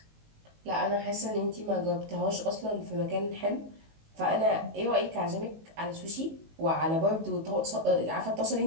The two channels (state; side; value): late; left; 19 ms